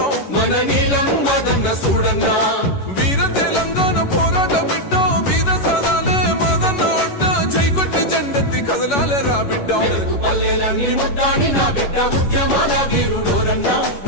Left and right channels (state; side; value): late; right; 11 ms